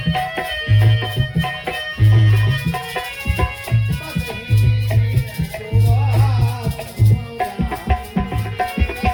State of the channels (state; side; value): identical; both; correlation 1.00